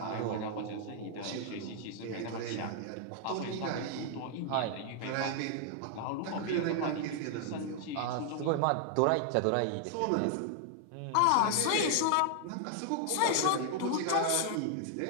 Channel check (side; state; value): both; different; correlation 0.00